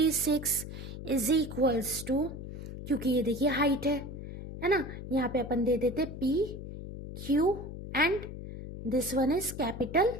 इज इक्वल्स टू, क्योंकि ये देखिए हाइट है ना, यहाँ पे अपन दे देते PQ and this one is capital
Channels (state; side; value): noise; left; hum, 10 dB below the sound